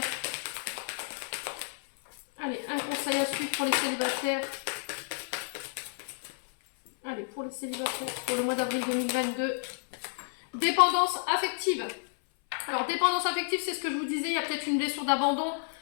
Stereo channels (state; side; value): silent; right; 57 dB below the other